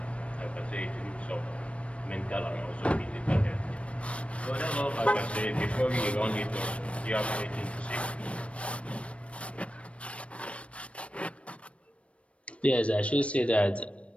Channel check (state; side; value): late; right; 0.062 ms